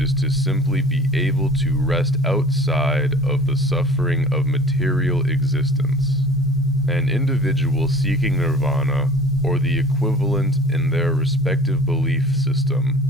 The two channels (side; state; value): both; normal; correlation 0.44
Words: to simply be able to rest outside of the suffering of material existence. An individual seeking nirvana, or the equivalent in their respective belief system,